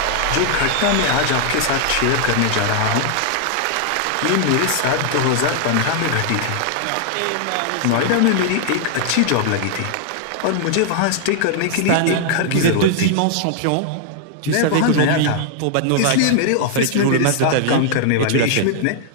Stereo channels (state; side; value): different; both; correlation 0.00